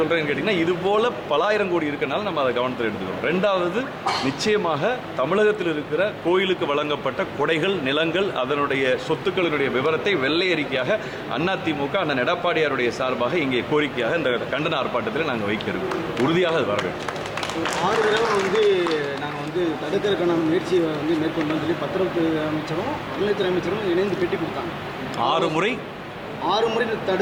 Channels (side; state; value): both; identical; correlation 1.00